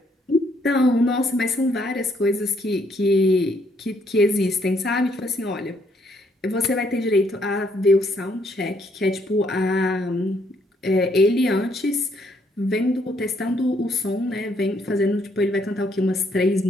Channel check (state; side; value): normal; both; correlation 0.70